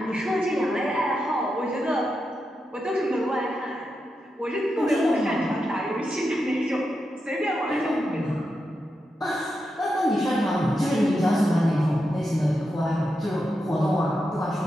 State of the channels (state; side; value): normal; both; correlation 0.87